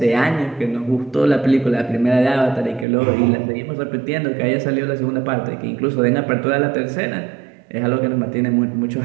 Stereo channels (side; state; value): left; drops out; at 2.9 s